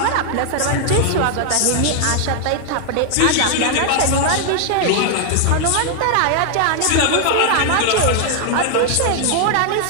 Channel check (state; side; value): different; both; correlation 0.00